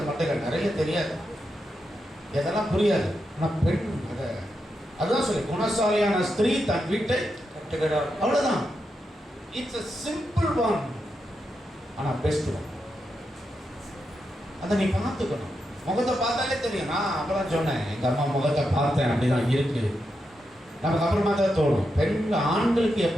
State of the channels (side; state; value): both; normal; correlation 0.86